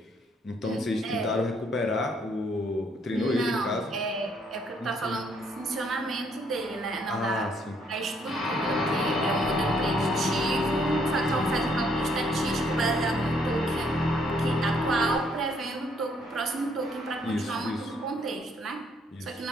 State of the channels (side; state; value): both; normal; correlation 0.68